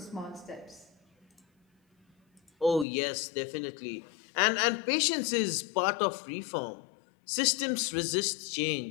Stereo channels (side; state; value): right; drops out; at 2.9 s